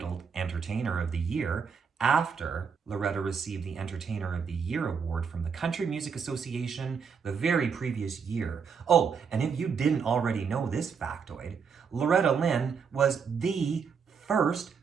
Entertainer of the Year after Loretta received the Entertainer of the Year award from the Country Music Association the very previous year. Oh, and if you didn't already know this factoid, Loretta Lynn was the first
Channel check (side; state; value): left; quieter; 6.2 dB